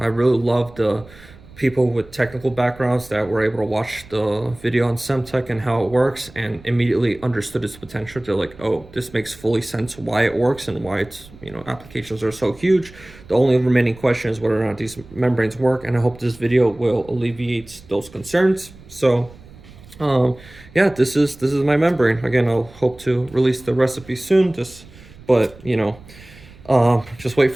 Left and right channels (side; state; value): right; noise; rumble, 22 dB below the sound